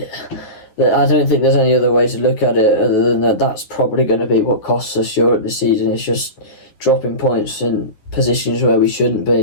don't think there's any other way to look at it other than that's probably going to be what costs us Europe this season. It's just dropping points in positions where we shouldn't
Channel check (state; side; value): late; right; 9.9 ms